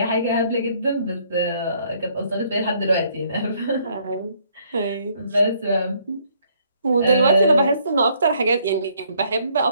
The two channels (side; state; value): both; inverted; correlation -0.67